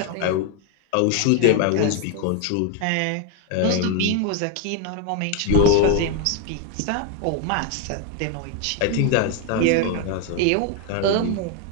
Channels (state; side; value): different; both; correlation 0.01